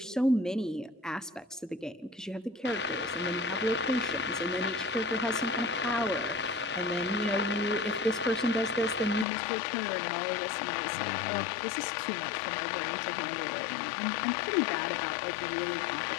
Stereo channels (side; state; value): right; drops out; at 9.2 s